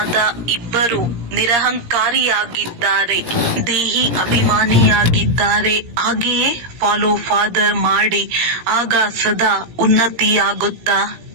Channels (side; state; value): left; late; 17 ms